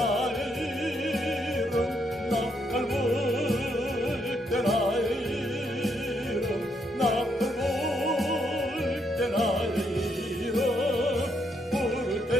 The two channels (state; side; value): normal; both; correlation 0.76